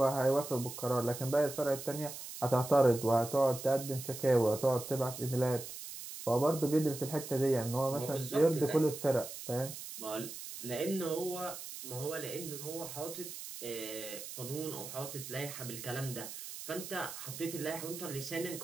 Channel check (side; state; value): right; noise; hiss, 10 dB below the sound